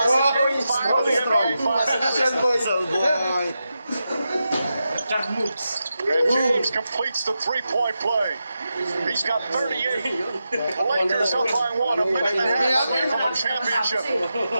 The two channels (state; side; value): inverted; both; correlation -0.89